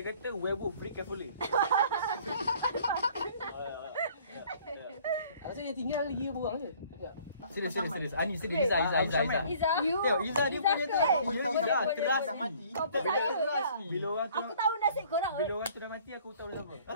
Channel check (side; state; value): both; inverted; correlation -0.54